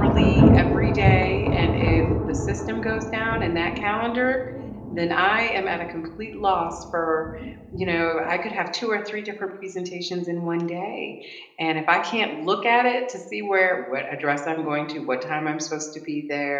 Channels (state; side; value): identical; both; correlation 1.00